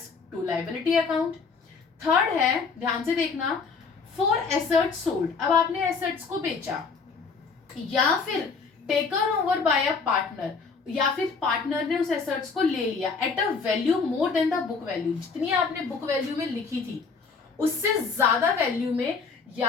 to liability account. Third है, ध्यान से देखना, फॉर एसेट्स सोल्ड, अब आपने एसेट्स को बेचा या फिर taken over by a partner, या फिर पार्टनर ने उस एसेट्स को ले लिया at a value more than the book value, जितनी आपने बुक वैल्यू में लिखी थी उससे ज्यादा वैल्यू में,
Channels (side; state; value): right; quieter; 5.0 dB